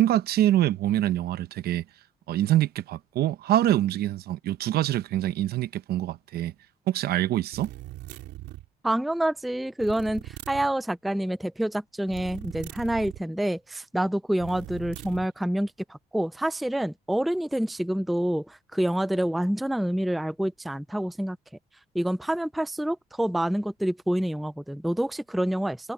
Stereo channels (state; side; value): quieter; left; 4.1 dB